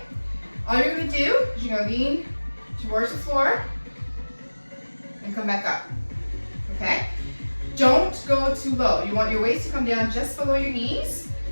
All you're going to do is you're going to lean towards the floor and come back up. Okay. Don't go too low. You want your weights to come down just below your knees.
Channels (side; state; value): both; inverted; correlation -1.00